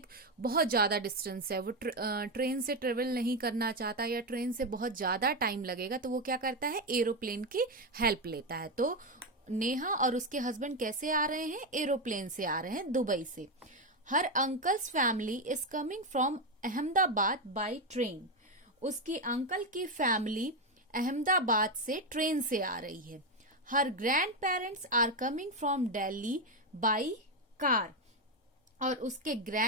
बहुत ज्यादा डिस्टेंस है, वो ट्रेन से ट्रेवल नहीं करना चाहता या ट्रेन से बहुत ज्यादा टाइम लगेगा, तो वो क्या करता है? एरोप्लेन की हेल्प लेता है. तो नेहा और उसके हस्बैंड कैसे आ रहे हैं? एरोप्लेन से आ रहे हैं, दुबई से. Her uncle's family is coming from Ahmedabad by train. उसकी अंकल की फैमिली अहमदाबाद से ट्रेन से आ रही है. Her grand parents are coming from Delhi by car. और उसके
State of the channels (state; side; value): normal; both; correlation 0.08